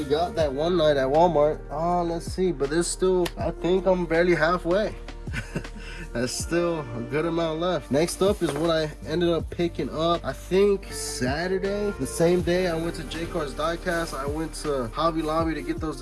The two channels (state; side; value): identical; both; correlation 1.00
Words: got that one night at Walmart. Let's see, but there's still, I think I'm barely halfway. That's still a good amount left. Next up is what I ended up picking up, I think Saturday. The same day I went to Jcardiecast, I went to Hobby Lobby to get those